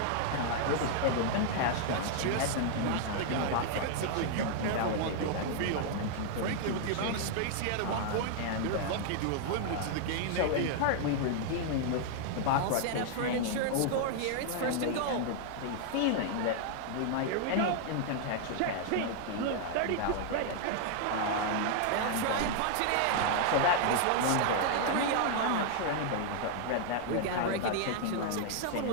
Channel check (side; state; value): both; different; correlation 0.00